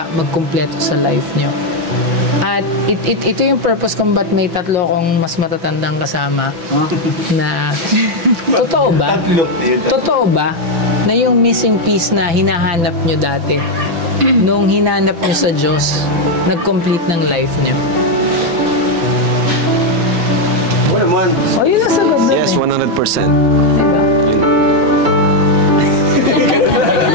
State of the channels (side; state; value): left; late; 5.9 ms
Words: magkumpleto sa life nyo. At ito yung purpose kung ba't may tatlo akong mas matatandang kasama na totoo ba na yung missing piece na hinahanap nyo dati nung hinanap nyo sa Diyos nag-complete ng life nyo? Oo naman. Yun ang sagot. Yes, 100%. Diba?